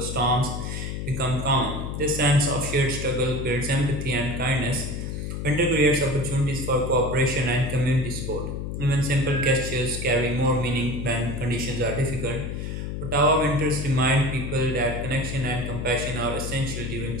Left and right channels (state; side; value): noise; left; hum, 5 dB below the sound